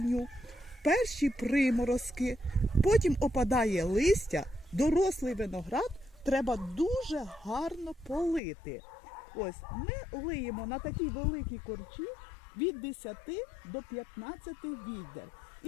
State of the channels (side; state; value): right; drops out; at 8.4 s